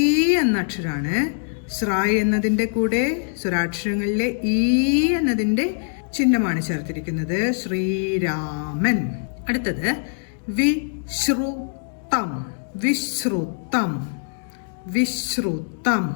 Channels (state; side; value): silent; right; digital silence